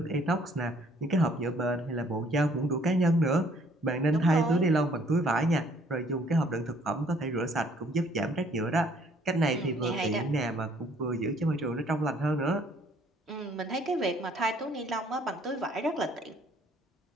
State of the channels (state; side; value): normal; both; correlation 0.62